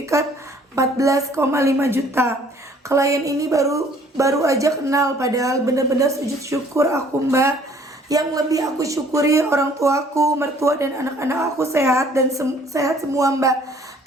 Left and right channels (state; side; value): normal; both; correlation 0.57